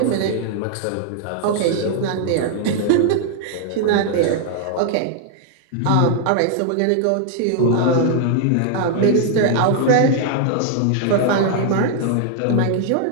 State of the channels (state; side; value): different; both; correlation 0.00